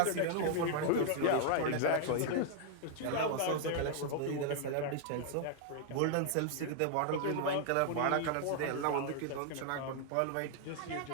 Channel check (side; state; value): both; different; correlation -0.01